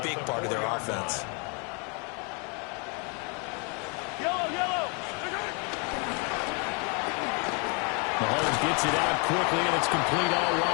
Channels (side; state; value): right; quieter; 34.5 dB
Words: big part of their offense. Mahomes gets it out quickly, and it's complete all